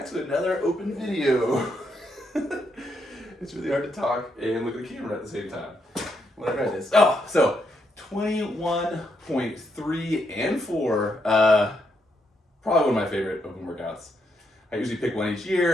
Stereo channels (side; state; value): both; normal; correlation 0.78